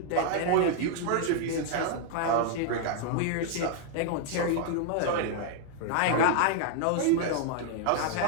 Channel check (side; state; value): both; different; correlation 0.00